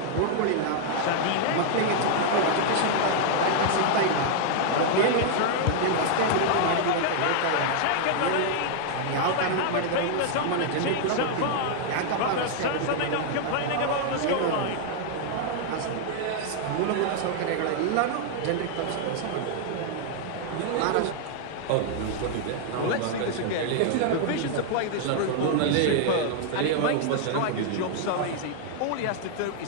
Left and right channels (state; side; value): different; both; correlation 0.00